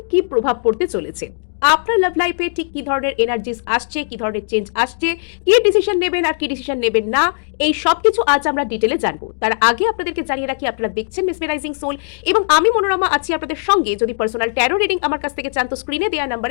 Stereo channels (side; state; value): right; silent; digital silence